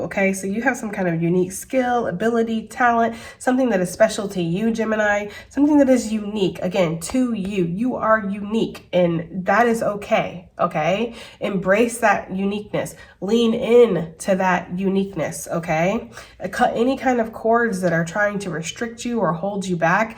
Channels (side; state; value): both; identical; correlation 1.00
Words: okay? So you have some kind of unique skill, ability, talent, something that is special to you, Gemini, something that is unique, again, to you. You are unique, and that is okay, okay? Embrace that uniqueness. Lean in to that uniqueness, okay? Cut any kind of cords that are trying to restrict you or hold you back.